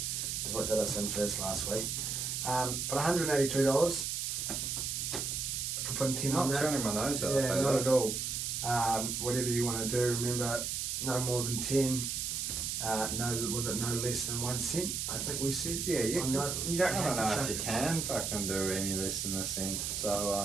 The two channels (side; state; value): right; noise; hiss, 2 dB below the sound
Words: is what did us in first last week. But $182 for putting 10 on that. Not turning my nose out. Yeah, not at all. Whatever you want to do, remember, no more than 10. Was it no less than 1 cent? I think we said. Yeah, you don't I don't know if you can fucking do any less than a cent.